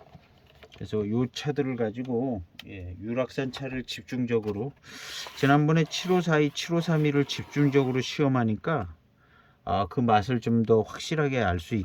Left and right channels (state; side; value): identical; both; correlation 1.00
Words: 그래서 이 차들을 가지고 유락산 차를 집중적으로 지난번에 7542, 7532를 집중적으로 시험하니까 그 맛을 좀 더 확실하게 알 수